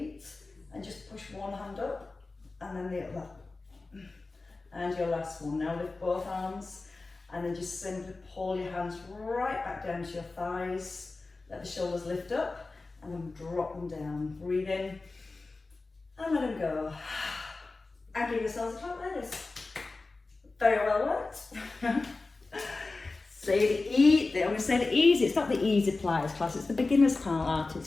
and just push one hand up and then the other. And your last one. Now lift both arms and then just simply pull your hands right back down to your thighs. Let the shoulders lift up and then drop them down. Breathe in and let them go. And give yourselves a clap, ladies. Very well worked. I'm going to say the easy. It's not the easy Pilates class, it's the beginner's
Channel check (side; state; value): right; quieter; 3.5 dB